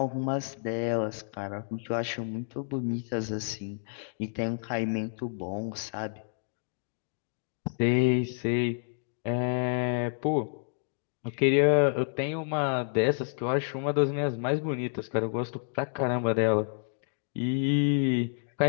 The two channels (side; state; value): right; silent; digital silence